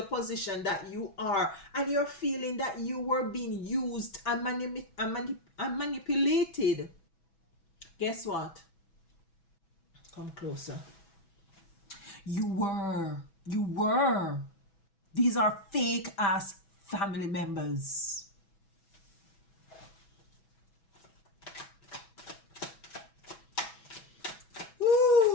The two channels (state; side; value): late; right; 6.1 ms